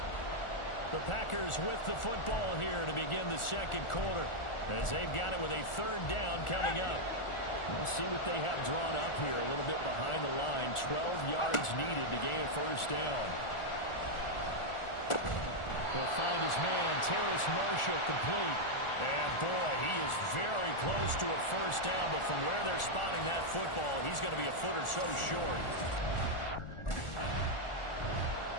The Packers with the football here to begin the second quarter, as they've got it with a third down coming up. We'll see what they have drawn up here. A little bit behind the line. 12 yards needed to gain a first down. He'll find his man, Terrace Marshall, complete. And boy, he is very close to a first down, but from where they're spotting that football, he's going to be a foot or so short.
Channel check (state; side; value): late; right; 1.4 ms